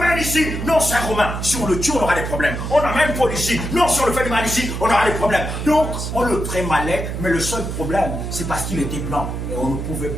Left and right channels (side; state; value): right; noise; hum, 5 dB below the sound